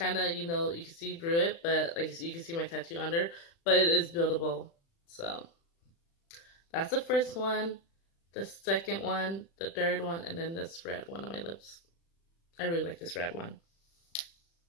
of, you know, you can see through it, but like you can see my tattoo under, but it is buildable. So that's the first one, the second one, the third one, and then this red one on my lips. I really like this red one.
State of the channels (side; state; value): right; late; 36 ms